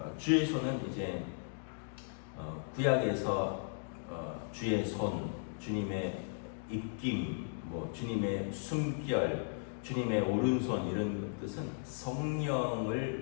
손은 이제 구약에서 주의 손, 주님의 입김, 주님의 숨결, 주님의 오른손 이런 뜻은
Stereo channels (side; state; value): right; silent; digital silence